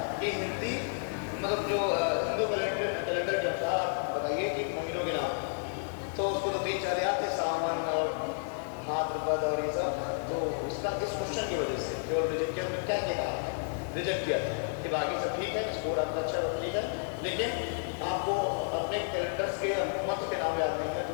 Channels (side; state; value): right; silent; digital silence